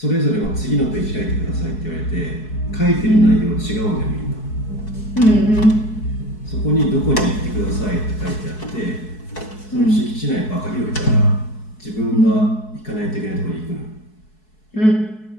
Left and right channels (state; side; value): late; right; 4.7 ms